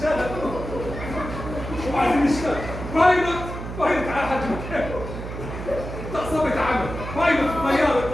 وعايزين نشتغل. بايلوت. بايلوت على حد مكانه. تعصبت عمل. بايلوت طيارة.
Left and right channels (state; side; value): noise; right; hum, 8 dB below the sound